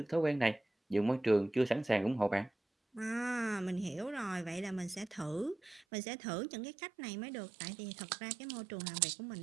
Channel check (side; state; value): left; drops out; at 5.9 s